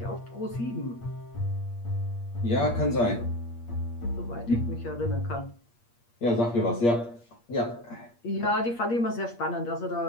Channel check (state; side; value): late; right; 8.5 ms